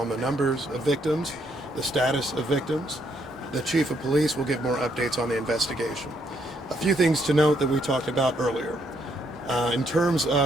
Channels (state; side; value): normal; both; correlation 0.73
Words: the numbers of victims, the status of victims. The chief of police will give more updates on the investigation. A few things to note that we talked about earlier. In terms